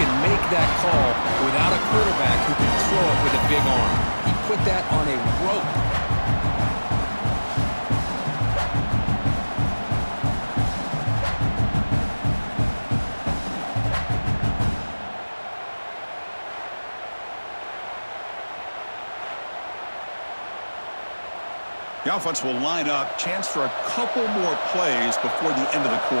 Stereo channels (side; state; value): both; inverted; correlation -1.00